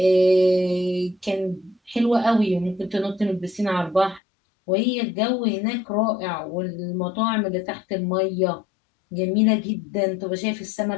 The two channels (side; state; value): right; drops out; at 4.2 s